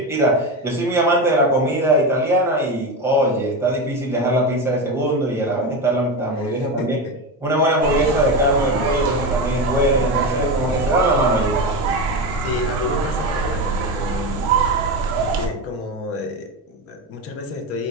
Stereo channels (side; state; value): both; normal; correlation 0.18